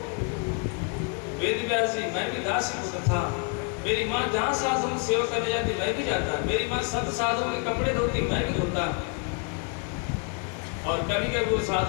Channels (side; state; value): right; quieter; 36.5 dB